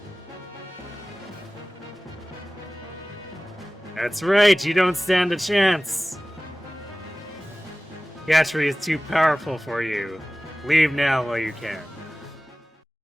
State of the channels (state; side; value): normal; both; correlation 0.98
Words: That's right, you don't stand a chance! Gatry is too powerful for you. Leave now while you can.